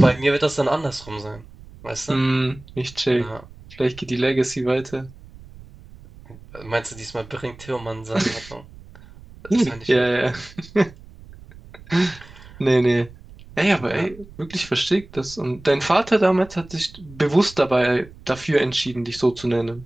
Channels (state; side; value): noise; right; rumble, 20 dB below the sound